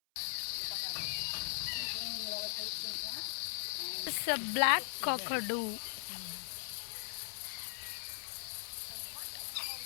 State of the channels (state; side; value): silent; right; 52 dB below the other